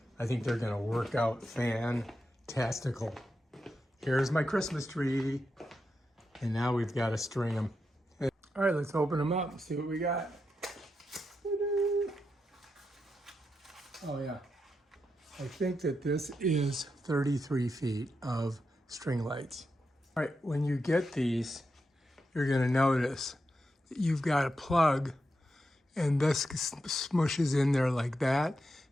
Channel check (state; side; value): normal; both; correlation 0.86